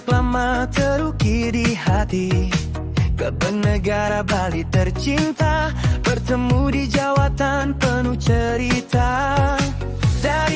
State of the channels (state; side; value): identical; both; correlation 1.00